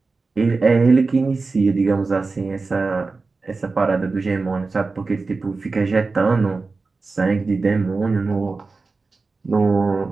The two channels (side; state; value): left; quieter; 4.0 dB